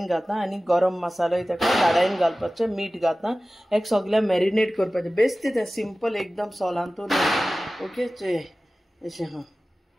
घाता, आणि गरम मसाला ताका दाडायन घालपाचे, मीठ घाता, एक सगळ्या मॅरिनेट करपाचे। बेस्ट ते सिंपल एकदम सोलांतून। ओके अशें, हाँ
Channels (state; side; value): normal; both; correlation 0.96